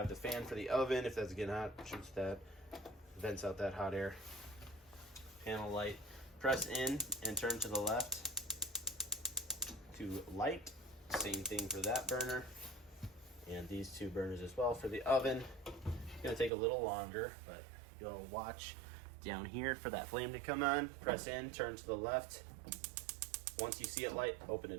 the fan for the oven. If that's getting hot, shoots that, vents out that hot air. Panel light. Press in and turn to the left to light. Same thing for that burner. And these two burners as well for the oven. It's gonna take a little longer, but you'll watch down here for that flame to come on. Press in, turn to the left. Once you see it light, open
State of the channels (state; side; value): drops out; left; at 16.5 s